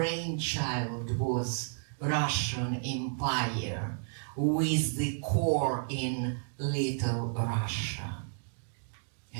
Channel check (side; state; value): left; silent; digital silence